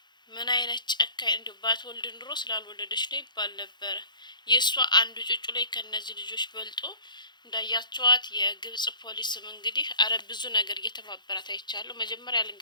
ምን አይነት ጨካኝ እንዲ ባትወልድ ኑሮ ስላልወለደች ነው ይባል ነበረ። የእሷ አንዱ ጩጩ ላይ ከነዚህ ልጆች በልጦ እንዳያቸዋት የግብጽ ፖሊስም እንግዲህ አረ ብዙ ነገር እየተባበራት አይቻለሁ። መጀመሪያ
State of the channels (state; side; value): late; right; 0.21 ms